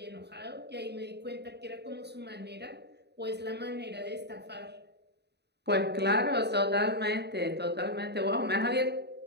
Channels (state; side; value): late; left; 0.49 ms